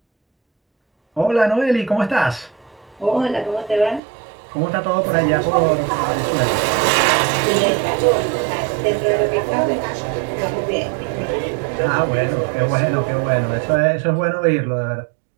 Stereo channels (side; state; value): left; drops out; at 4.0 s